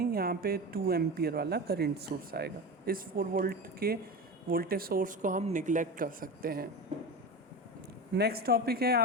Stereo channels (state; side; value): normal; both; correlation 0.26